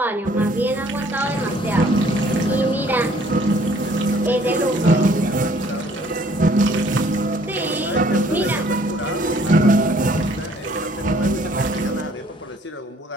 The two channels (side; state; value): both; normal; correlation 0.60